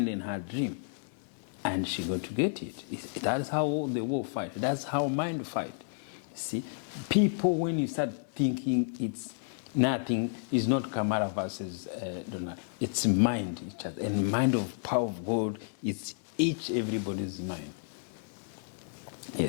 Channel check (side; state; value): right; silent; 57 dB below the other